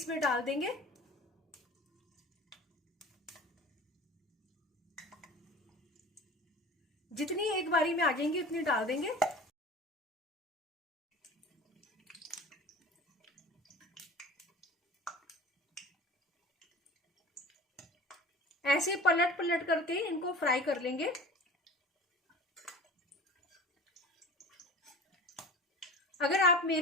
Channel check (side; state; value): both; normal; correlation 0.39